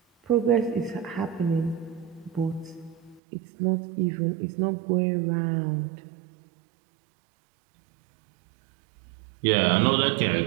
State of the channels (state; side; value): drops out; left; at 3.2 s